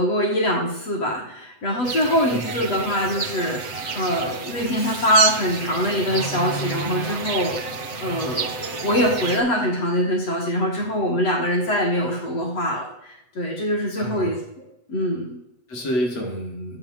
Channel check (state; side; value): late; right; 8.0 ms